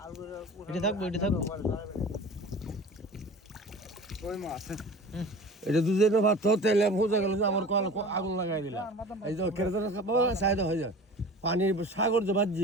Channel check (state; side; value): normal; both; correlation 0.39